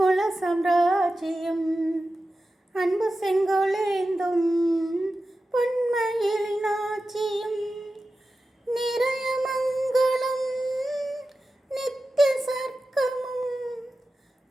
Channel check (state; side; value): normal; both; correlation 0.93